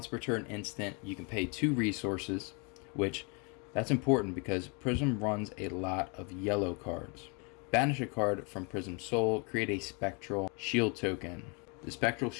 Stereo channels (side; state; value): right; quieter; 33.4 dB